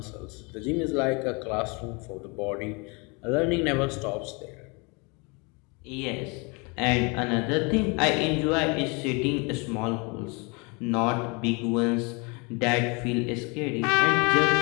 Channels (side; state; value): right; quieter; 30.2 dB